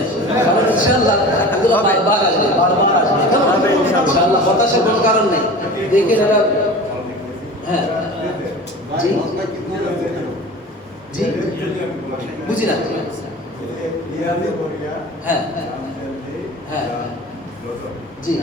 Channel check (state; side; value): normal; both; correlation 0.36